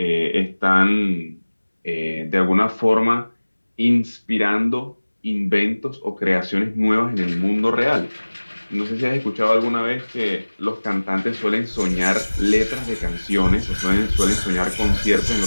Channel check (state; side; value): inverted; both; correlation -1.00